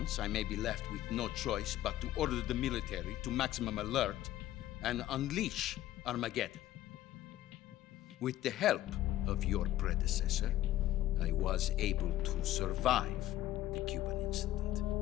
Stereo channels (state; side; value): quieter; right; 13.9 dB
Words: I may be left with no choice but to order the military to maximum alert and unleash Armageddon. With the help of your predecessor, I was able to survive the Cuban incident.